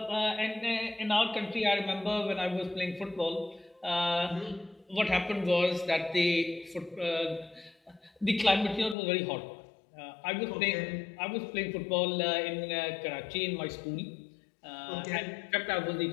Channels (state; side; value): drops out; right; at 9.0 s